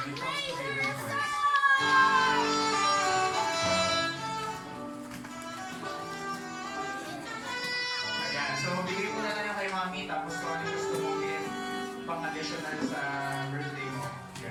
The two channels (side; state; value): both; identical; correlation 1.00